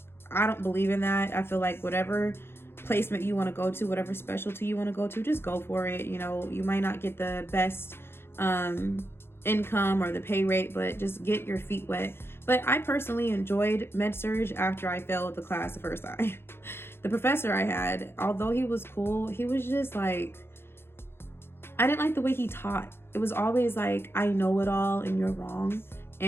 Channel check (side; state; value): right; late; 0.11 ms